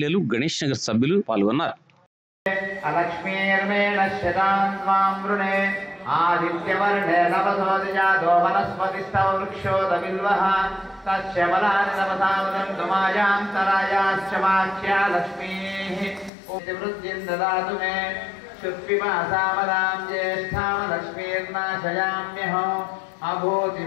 గణేష్ నగర్ సభ్యులు పాల్గొన్నారు. ఆదిత్యవర్ణే నవసోదిజాతో వనస్పతిస్తవ వృక్షోదవిల్వః తస్యబలాని నవసావదంతుమాయాంతరాయాశ్చ వాక్యా లక్ష్మీః వృద్ధిం దదాతు మే శుక్విమాసామదాం జ్యేష్ఠాం లక్ష్మీర్నాశయామ్యహం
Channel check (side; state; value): right; drops out; at 16.3 s